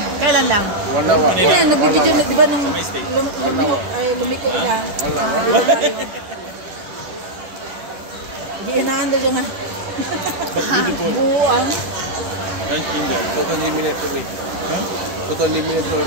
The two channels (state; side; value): late; left; 10 ms